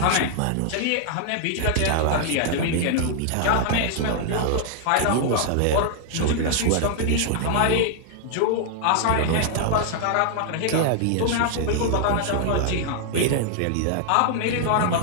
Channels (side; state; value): both; different; correlation 0.00